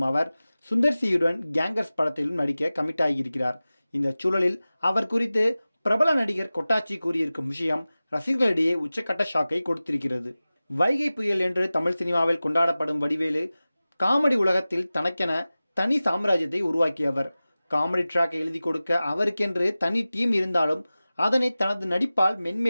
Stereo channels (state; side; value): inverted; both; correlation -0.97